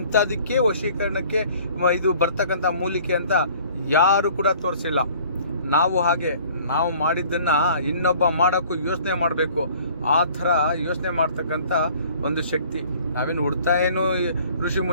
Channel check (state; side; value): inverted; both; correlation -0.53